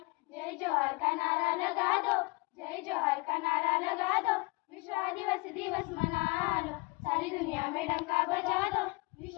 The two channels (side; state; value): right; quieter; 28.0 dB